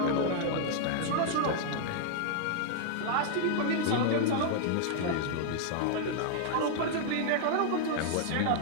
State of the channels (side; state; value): both; different; correlation -0.01